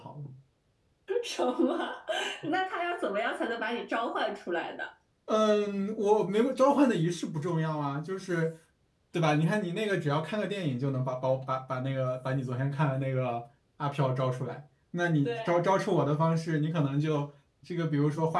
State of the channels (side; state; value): both; identical; correlation 1.00